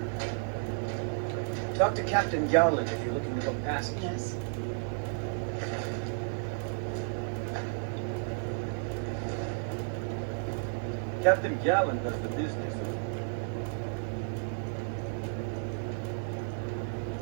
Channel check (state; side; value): silent; left; 56 dB below the other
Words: Talk to Captain Garland if you're looking to book passage. Yes. Captain Garland does the business.